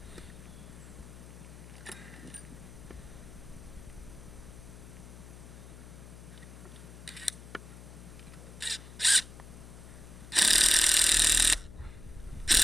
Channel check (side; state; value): left; noise; hum, 15 dB below the sound